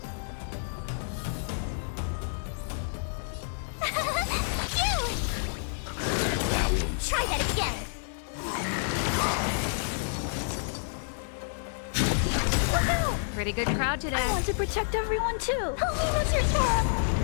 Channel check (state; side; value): silent; right; digital silence